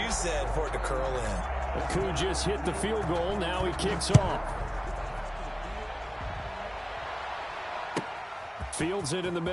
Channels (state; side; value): identical; both; correlation 1.00